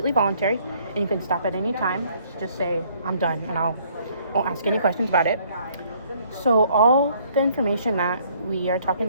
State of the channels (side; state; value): both; inverted; correlation -0.63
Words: voluntary, and you can stop at any time. Just say, I'm done, and I won't ask any questions about it. So, all the information that we are talking